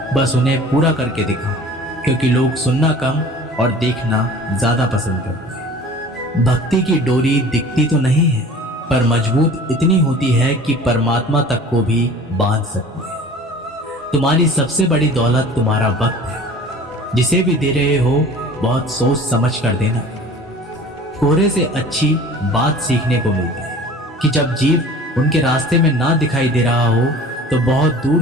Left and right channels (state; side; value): normal; both; correlation 0.44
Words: बस उन्हें पूरा करके दिखाओ, क्योंकि लोग सुनना कम और देखना ज़्यादा पसंद करते हैं। भक्ति की डोरी दिखती तो नहीं है, पर मजबूत इतनी होती है कि परमात्मा तक को भी बांध सकती है। तुम्हारी सबसे बड़ी दौलत तुम्हारा वक्त है। जिसे भी दे रहे हो बहुत सोच समझ कर देना। कोहरे से अच्छी बात सीखने को मिलती है कि जब जीव उनके रास्ते में ना दिखाई दे रहा हो तो बहुत दूर